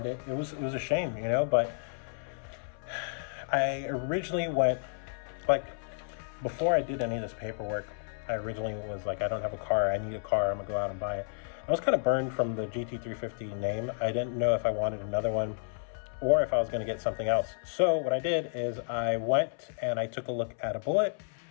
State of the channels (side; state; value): right; silent; 57 dB below the other